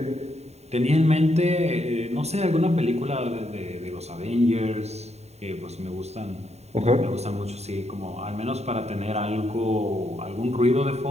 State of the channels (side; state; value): left; late; 0.31 ms